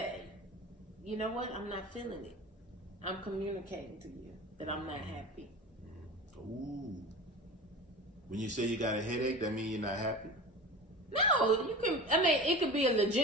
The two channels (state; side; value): normal; both; correlation 0.33